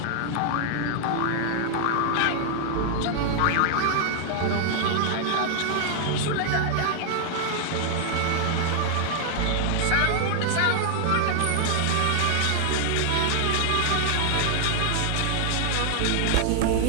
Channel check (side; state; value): both; different; correlation 0.00